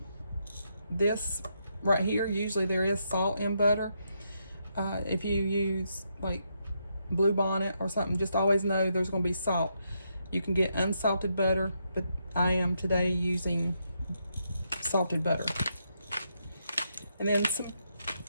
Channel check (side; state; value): both; inverted; correlation -0.79